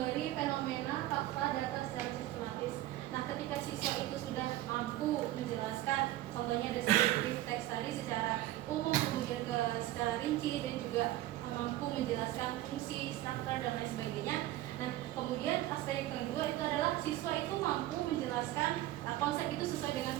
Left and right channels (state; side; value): quieter; left; 15.3 dB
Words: fenomena, fakta, data secara sistematis. Nah, ketika siswa itu sudah mampu menjelaskan, contohnya descriptive text tadi secara umum, kemudian secara rinci, dan juga mampu menjelaskan fungsi, struktur, dan lain sebagainya. Nah, kemudian aspek yang kedua itu adalah siswa itu mampu menjelaskan konsep itu sesuai dengan